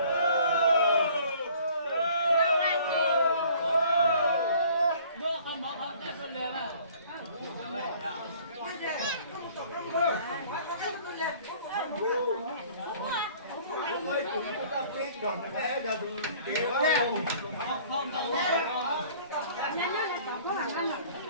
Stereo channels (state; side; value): inverted; both; correlation -0.53